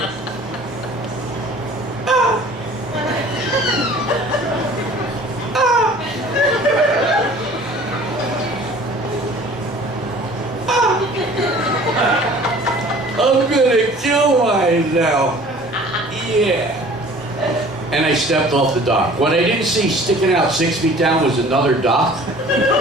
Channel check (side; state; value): both; normal; correlation 0.48